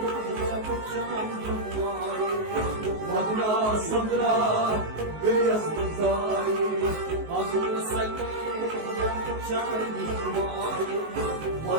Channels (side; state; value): left; late; 19 ms